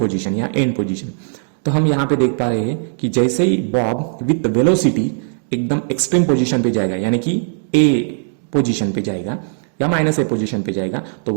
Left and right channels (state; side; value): silent; left; digital silence